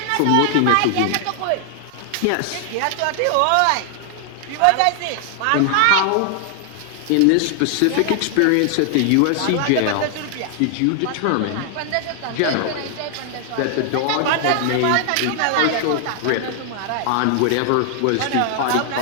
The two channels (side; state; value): both; different; correlation 0.00